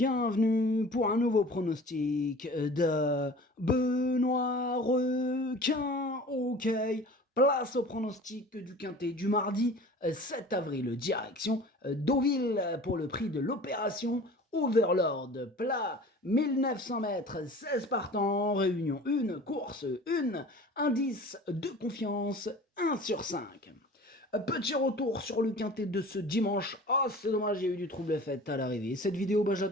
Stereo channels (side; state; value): both; normal; correlation 0.42